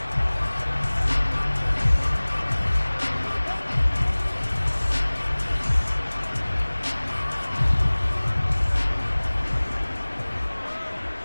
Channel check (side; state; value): both; inverted; correlation -1.00